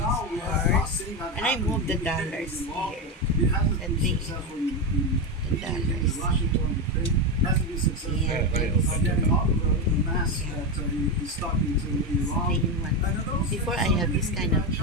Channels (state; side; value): normal; both; correlation 0.12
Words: ours. And I moved the dollars here. And the dollars. Yeah, before I have this kind of